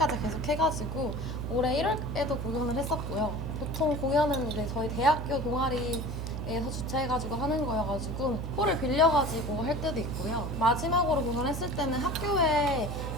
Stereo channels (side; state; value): right; noise; hum, 5 dB below the sound